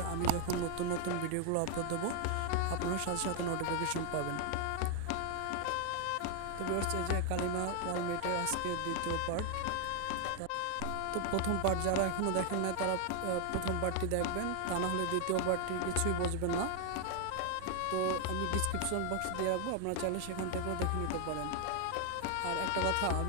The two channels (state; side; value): different; both; correlation 0.00